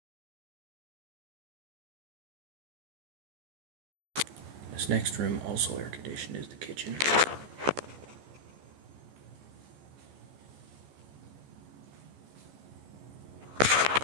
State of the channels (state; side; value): late; left; 14 ms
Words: This next room, also air conditioned, is the kitchen.